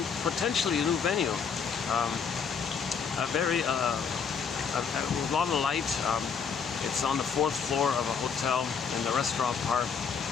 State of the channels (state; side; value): quieter; right; 6.3 dB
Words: potentially a new venue, a very with a lot of light. It's on the 4th floor of a hotel in the restaurant part,